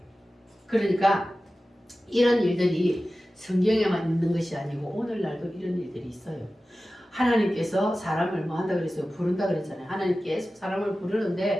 그러니까 이런 일들이 성경에만 있는 것이 아니고 오늘날도 이런 일들이 있어요. 하나님께서 사람을 뭐 한다 그랬어요? 부른다 그랬잖아요. 하나님 계속 사람을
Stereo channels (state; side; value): normal; both; correlation 0.95